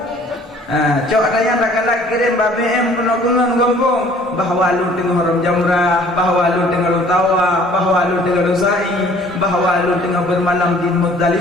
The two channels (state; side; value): normal; both; correlation 0.55